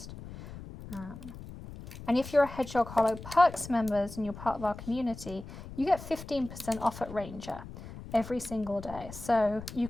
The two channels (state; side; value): noise; left; rumble, 13 dB below the sound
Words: And if you're a Hedgehog Hollow Perks members and you're part of our community, you get 15% off at Ranger every single day. So you